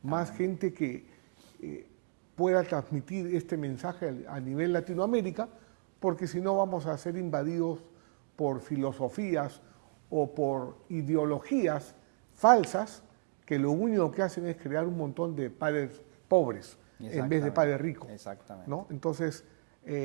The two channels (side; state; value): left; silent; digital silence